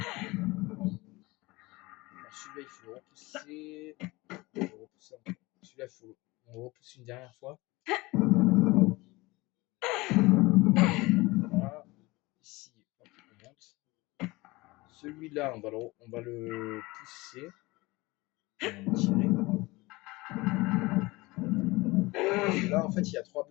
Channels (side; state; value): right; quieter; 22.0 dB